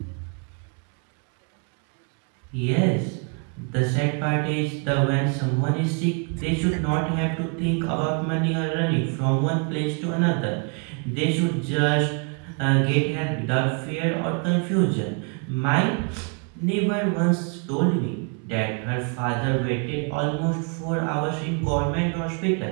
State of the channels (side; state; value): left; quieter; 38.0 dB